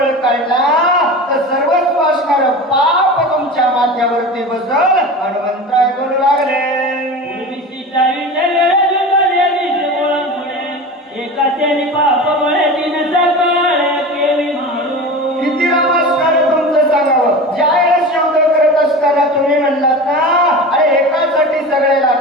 काढला तर सर्वस्व असणार पाप तुमच्या माथ्यावरती बसल. हनुमंतराय बोलू लागले. किती नमस्कार तुमचं सांगावं. ज्या वेळेस शब्द करत असताना तुम्ही म्हणलात ना अरे एकासाठी सगळ्याला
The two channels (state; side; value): normal; both; correlation 0.31